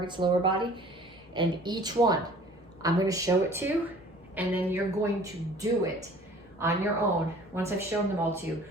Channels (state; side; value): normal; both; correlation 0.50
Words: lower body. And each one, I'm gonna show it to you, and then you're going to do it on your own, once I've shown them all to you,